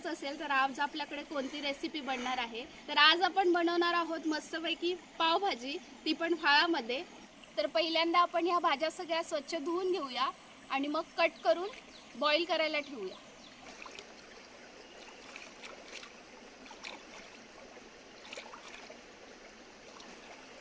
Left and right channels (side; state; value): both; identical; correlation 1.00